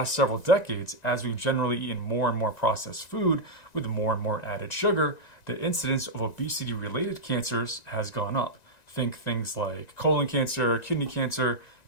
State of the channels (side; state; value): right; late; 1.9 ms